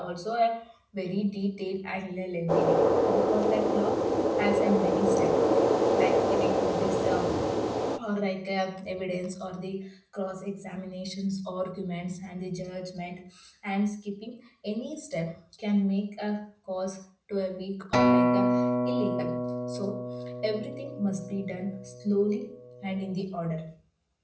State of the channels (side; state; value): both; identical; correlation 1.00